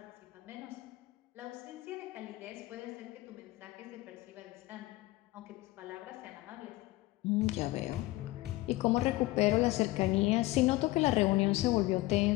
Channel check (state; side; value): quieter; right; 19.3 dB